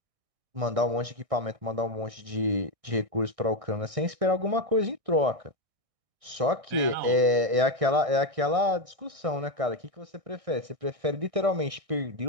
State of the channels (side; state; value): left; late; 1.6 ms